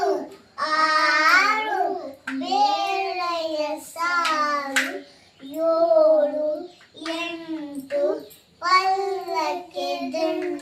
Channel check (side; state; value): both; identical; correlation 1.00